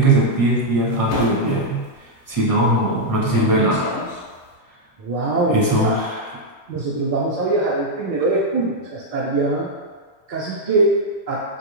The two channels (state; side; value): late; right; 4.6 ms